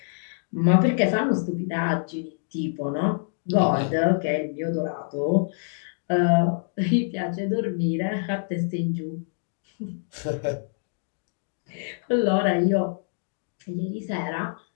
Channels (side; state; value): right; silent; digital silence